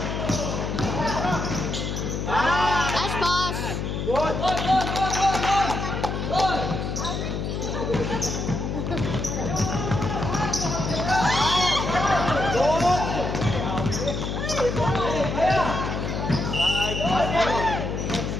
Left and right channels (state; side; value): noise; left; hum, 3 dB below the sound